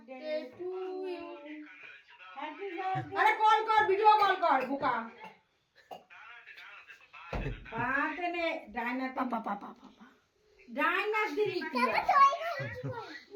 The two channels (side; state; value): both; identical; correlation 1.00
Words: to you. Happy birthday. আরে কল কর, ভিডিও কল কর বুকা। পাতে নে ডাইনার পাপা পাপা পাপা, ডাইনার দিলি কি?